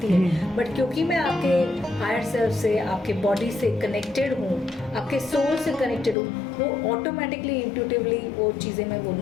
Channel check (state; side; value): drops out; right; at 6.2 s